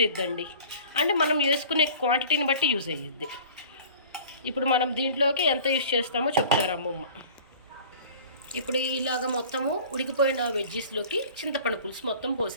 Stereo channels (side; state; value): both; inverted; correlation -0.44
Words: అవుతుందండి. అంటే మనం వేసుకునే క్వాంటిటీని బట్టి యూజ్ అయ్యిద్ది. ఇప్పుడు మనం దీంట్లోకి ఎంత యూజ్ చేస్తామో చెప్తారు అమ్మమ్మ. ఇప్పుడు ఇలాగ మొత్తము ఉడికిపోయిన వెజ్జెస్లోకి చింతపండు పులుసు మొత్తం